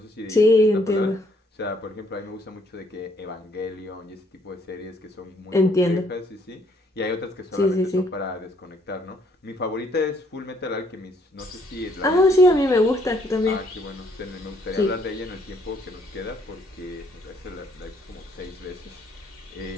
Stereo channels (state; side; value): normal; both; correlation 0.67